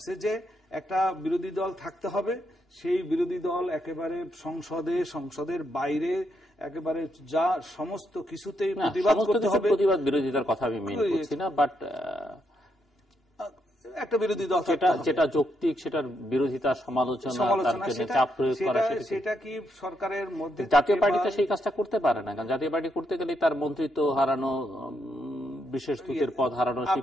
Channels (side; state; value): both; normal; correlation 0.79